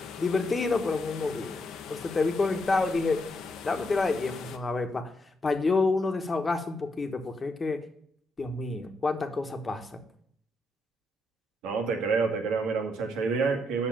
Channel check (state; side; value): normal; both; correlation 0.79